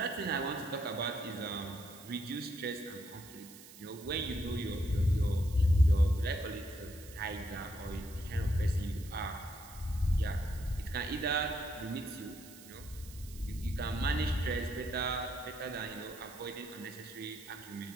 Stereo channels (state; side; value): noise; right; hiss, 18 dB below the sound